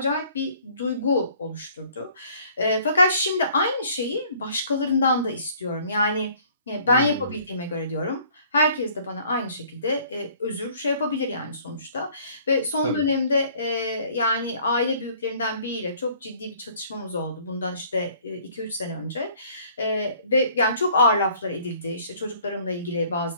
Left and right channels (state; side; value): inverted; both; correlation -0.57